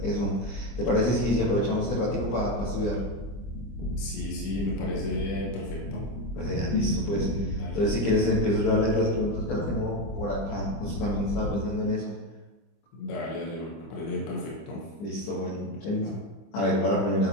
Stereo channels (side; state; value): right; late; 25 ms